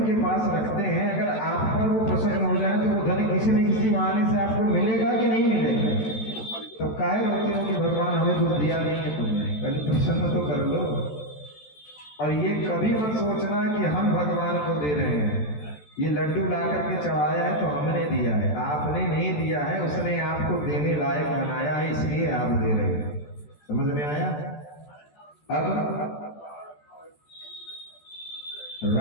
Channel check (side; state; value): right; late; 14 ms